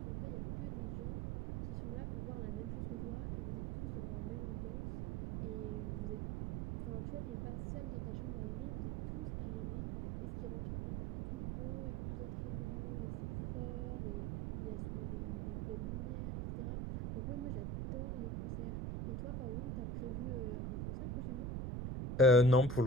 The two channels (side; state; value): right; noise; rumble, 1 dB below the sound